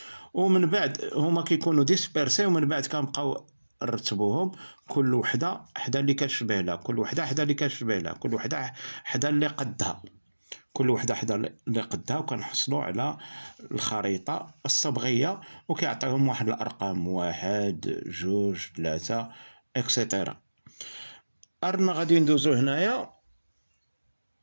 ومن بعد هما كيكونوا ديسبيرسي، ومن بعد كنبقاو نرتبوهم كل وحده حدا اللي كتشبه لها، كل وحده حدا اللي كتشبه لها، كل وحده حدا اللي قدها، كل وحده حدا اللي قدها، وكنحصلوا على الخريطه الصبغيه، وكيعطيهم واحد الارقام 1 2 3 اكسيتيرا. أرنا غادي ندوزو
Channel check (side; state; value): both; inverted; correlation -1.00